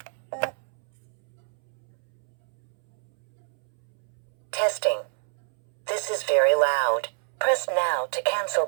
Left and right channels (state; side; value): silent; left; 60 dB below the other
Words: Testing. This is very loud. Press now to cancel